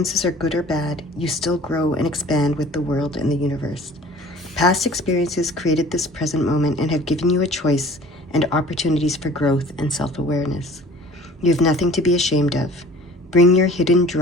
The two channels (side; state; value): both; normal; correlation 0.47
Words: are good or bad, you still grow and expand with the world and the universe. Past experiences created this present moment and have given you a choice and opportunities for growth and self-awareness. You have nothing to be ashamed of. Bring your hidden